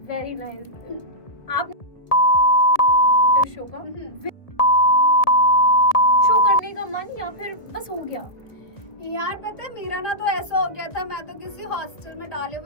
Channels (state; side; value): late; right; 1.5 ms